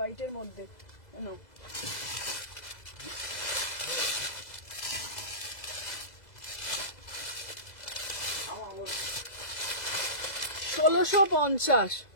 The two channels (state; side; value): late; right; 2.0 ms